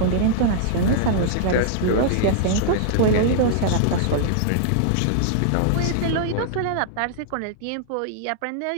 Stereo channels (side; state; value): both; different; correlation -0.01